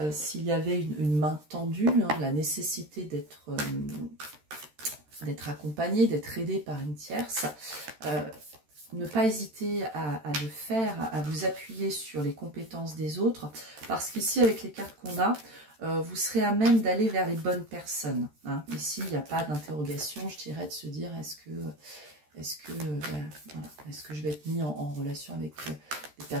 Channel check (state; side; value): late; left; 13 ms